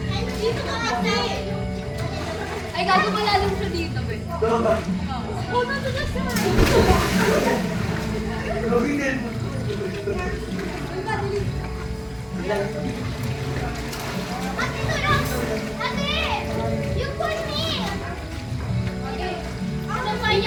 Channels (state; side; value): identical; both; correlation 1.00